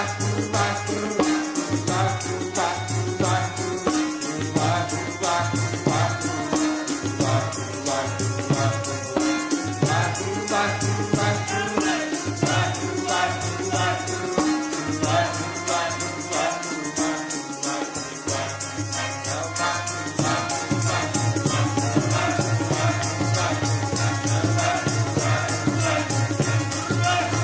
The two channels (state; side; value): identical; both; correlation 1.00